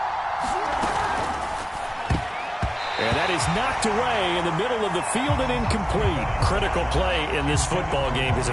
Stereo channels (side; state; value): both; identical; correlation 1.00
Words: And that is knocked away in the middle of the field and incomplete. Critical play in this football game, because